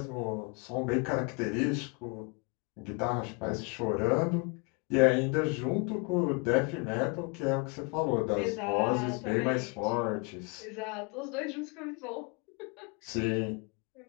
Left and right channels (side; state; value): right; quieter; 32.2 dB